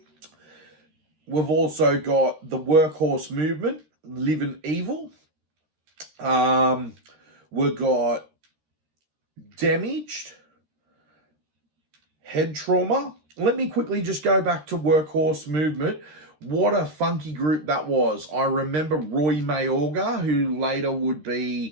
we've also got the Workhorse Movement, Living Evil. We've got Damaged, Head Trauma. Let me quickly just go back to Workhorse Movement. What a funky group that was. I remember Roy Mayorga, who later would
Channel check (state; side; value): late; left; 13 ms